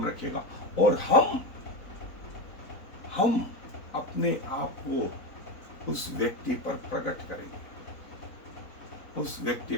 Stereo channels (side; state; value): right; late; 4.0 ms